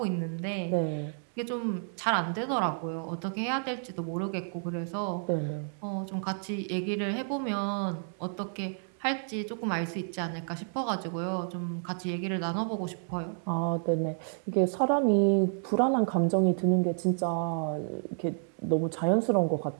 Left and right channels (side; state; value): left; silent; 58 dB below the other